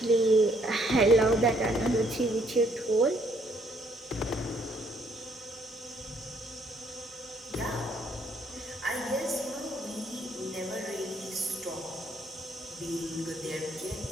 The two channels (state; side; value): normal; both; correlation 0.67